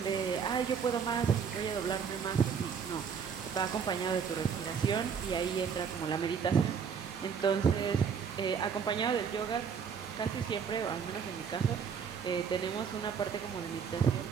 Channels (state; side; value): quieter; left; 6.8 dB